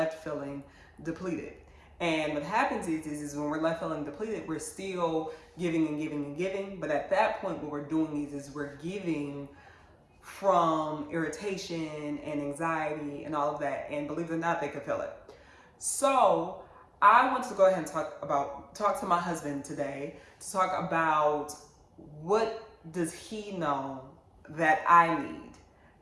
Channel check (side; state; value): both; identical; correlation 1.00